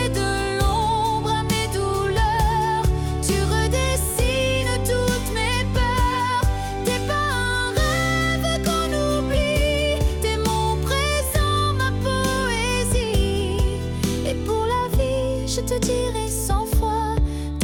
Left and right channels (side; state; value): both; identical; correlation 1.00